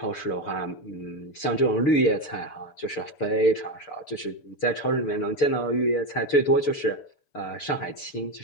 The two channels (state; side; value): late; right; 6.8 ms